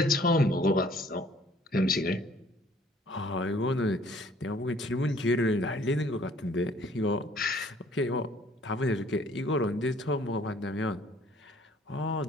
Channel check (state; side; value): normal; both; correlation 0.57